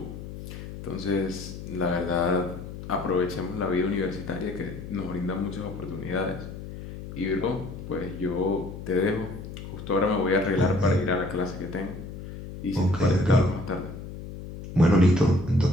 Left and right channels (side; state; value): left; noise; hum, 11 dB below the sound